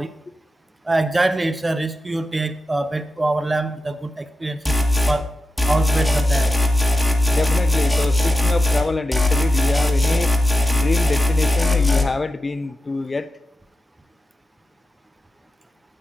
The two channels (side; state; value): both; normal; correlation 0.91